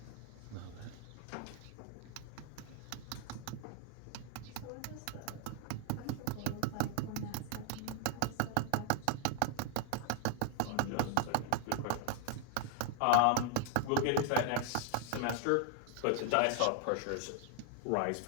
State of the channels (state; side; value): different; both; correlation 0.00